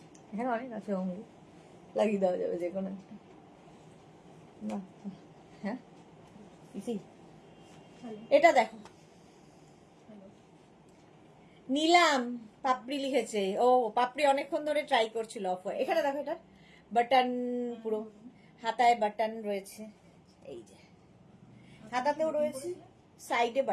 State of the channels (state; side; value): identical; both; correlation 1.00